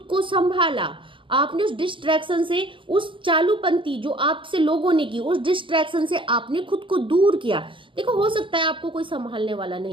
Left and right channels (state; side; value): late; left; 0.25 ms